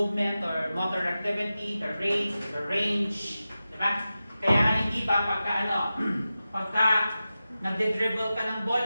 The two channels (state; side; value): inverted; both; correlation -0.93